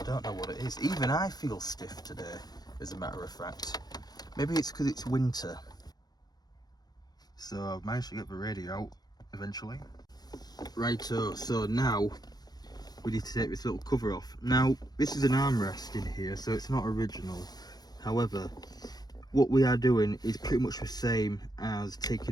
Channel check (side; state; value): right; late; 0.19 ms